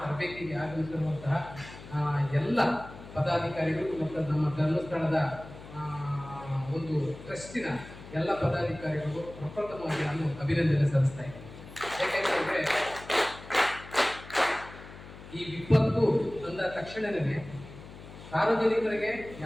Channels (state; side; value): noise; left; hum, 16 dB below the sound